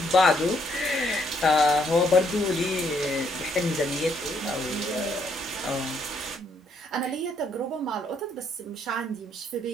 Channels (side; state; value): both; normal; correlation 0.71